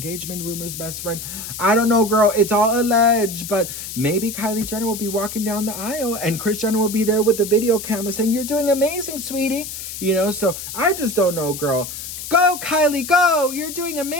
rumors, best friend. I don't know, girl. It's all alleged, but maybe Kylie Jenner will be walking down the aisle and Kris Jenner will be there with the video camera saying, "You're doing amazing, sweetie." So I just don't know, girl. Go, Kylie, go! You're doing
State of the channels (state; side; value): noise; left; hiss, 8 dB below the sound